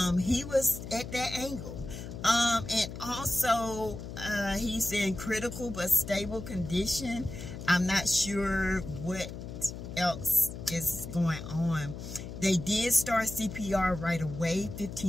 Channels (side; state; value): left; noise; hum, 9 dB below the sound